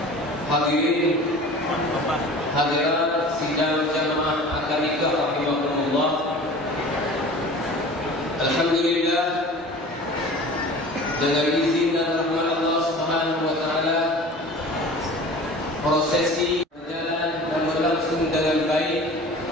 Hadirin hadirat sidang jamaah akademika rahimahumullah. Alhamdulillah, dengan izin dan rahmat Allah Subhanahu wa taala, prosesi berjalan dan berlangsung dengan baik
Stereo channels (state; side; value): normal; both; correlation 0.41